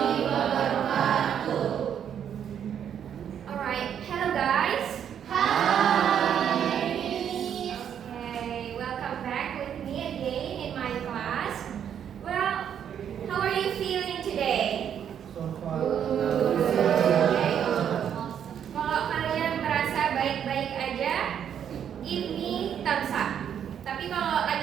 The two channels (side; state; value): left; quieter; 8.9 dB